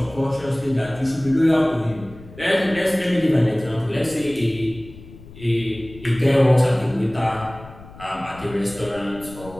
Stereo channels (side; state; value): left; noise; rumble, 18 dB below the sound